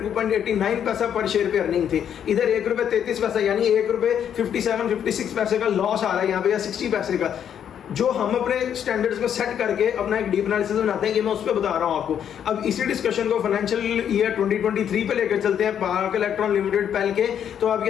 पैसा पर शेयर पे अर्निंग थी, इधर ₹1.33 यानी ₹1.57-56 का लॉस आ रहा है यहाँ पे, या 60 पैसे का, जो हम अपने स्टैंडर्ड्स को सेट करके अपना एक डीप एनालिसिस बनाते हैं। ये मैं उस पर बता रहा हूं आपको। अब इसी डिस्कशन को फाइनेंशियल ईयर 2023 पे लेकर चलते हैं पाक इलेक्ट्रॉन लिमिटेड पहल के, तो आप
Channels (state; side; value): quieter; right; 9.0 dB